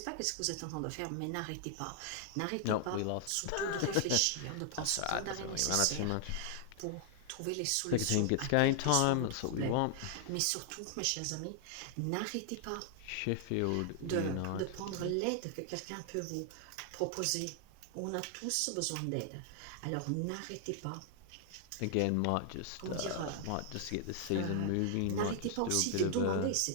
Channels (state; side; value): different; both; correlation 0.00